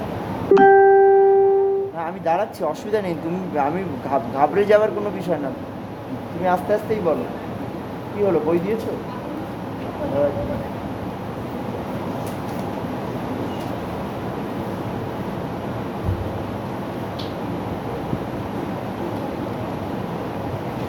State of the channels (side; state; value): both; identical; correlation 1.00